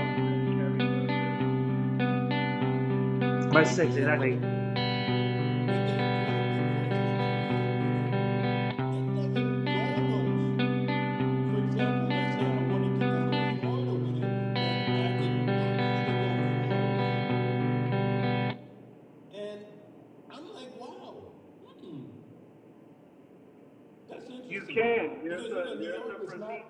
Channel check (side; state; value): both; identical; correlation 1.00